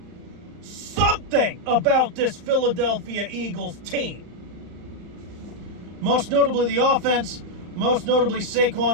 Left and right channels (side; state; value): left; late; 38 ms